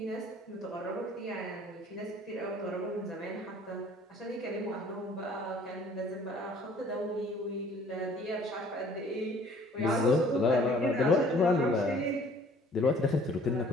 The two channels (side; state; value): both; normal; correlation 0.54